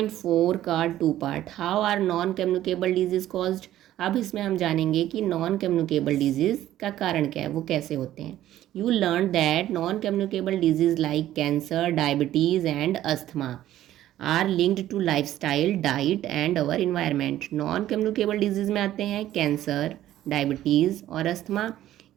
का 2 part, how are non communicable diseases caused. अब इसमें हम जानेंगे कि नॉन कम्युनिकेबल डिजीज़ का कारण क्या है, वो कैसे होते हैं। You learn that non communicable disease like cancer, diabetes and asthma are linked to lifestyle, diet and our environment. Non communicable diseases में आते हैं कैंसर, डायबिटीज़ और अस्थमा।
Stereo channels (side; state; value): left; quieter; 13.2 dB